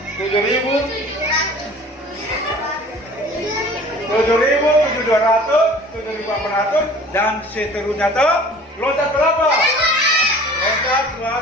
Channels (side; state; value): both; normal; correlation 0.46